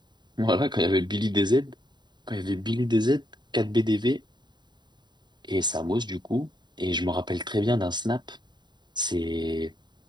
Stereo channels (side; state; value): left; late; 0.21 ms